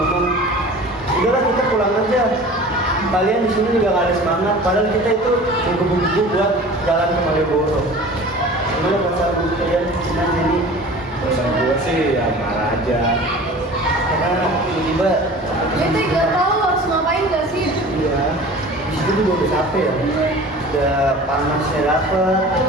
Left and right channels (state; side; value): normal; both; correlation 0.41